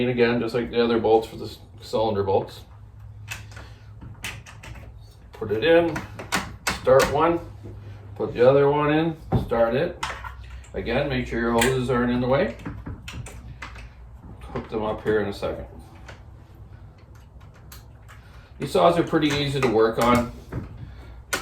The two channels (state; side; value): identical; both; correlation 1.00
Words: again, just like the other bolts for the cylinder bolts. Put it in, start one, put the other one in, start it. Again, make sure your hoses aren't in the way. Hook them up here in a second. These saws are pretty easy to work on.